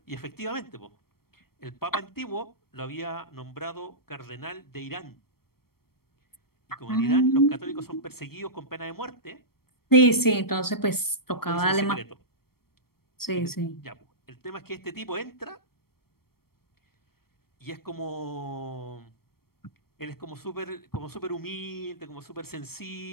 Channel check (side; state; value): right; late; 0.94 ms